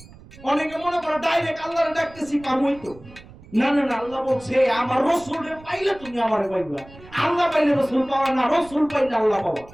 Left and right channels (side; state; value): right; noise; rumble, 21 dB below the sound